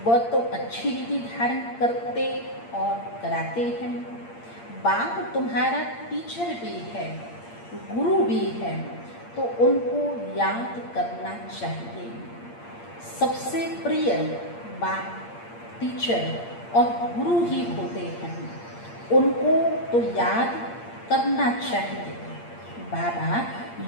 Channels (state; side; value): late; right; 8.6 ms